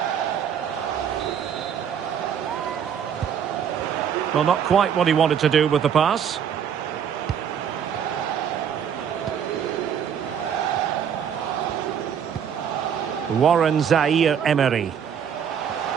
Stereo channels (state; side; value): quieter; left; 8.1 dB